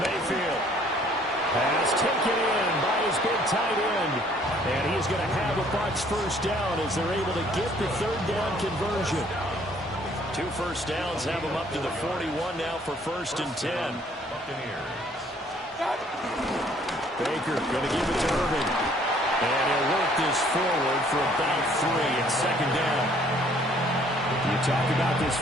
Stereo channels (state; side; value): normal; both; correlation 0.60